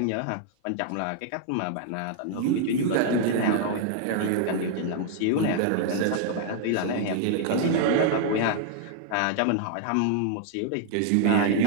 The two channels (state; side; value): different; both; correlation 0.00